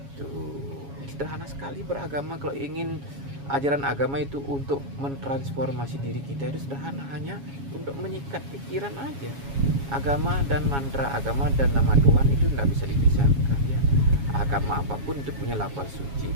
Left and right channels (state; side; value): late; left; 7.2 ms